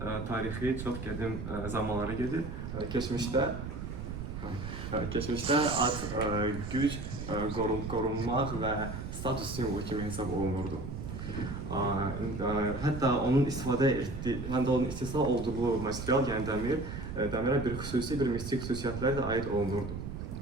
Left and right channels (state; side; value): noise; right; rumble, 7 dB below the sound